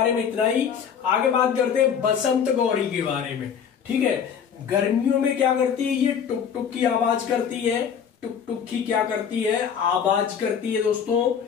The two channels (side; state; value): right; quieter; 7.6 dB